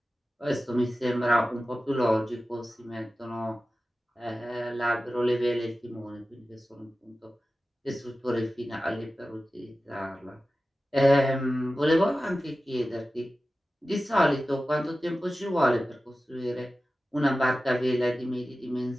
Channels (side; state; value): both; normal; correlation 0.95